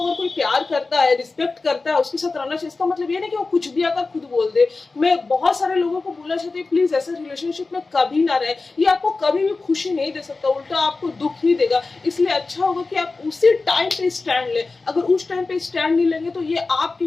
कोई प्यार करता है, रिस्पेक्ट करता है, उसके साथ रहना चाहिए। इसका मतलब ये नहीं कि वो कुछ भी आकर खुद बोल दे। मैं बहुत सारे लोगों को बोलना चाहती हूँ, प्लीज ऐसे रिलेशनशिप में कभी ना रहे, ये आपको कभी भी खुशी नहीं दे सकता, उल्टा आपको दुख ही देगा। इसलिए अच्छा होगा कि आप उसी टाइम पे स्टैंड लें। अगर उस टाइम पे स्टैंड नहीं लेंगे तो ये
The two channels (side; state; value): right; quieter; 3.8 dB